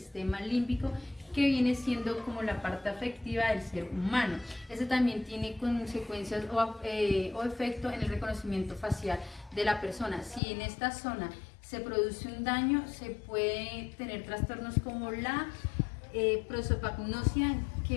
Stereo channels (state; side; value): drops out; right; at 10.4 s